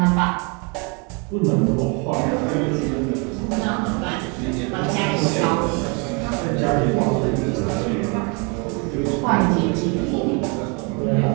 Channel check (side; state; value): left; quieter; 33.1 dB